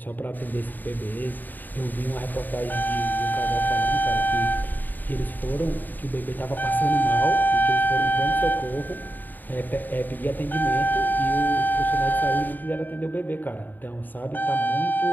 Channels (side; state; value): right; late; 0.088 ms